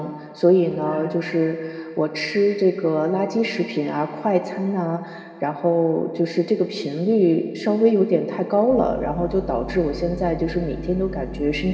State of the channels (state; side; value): identical; both; correlation 1.00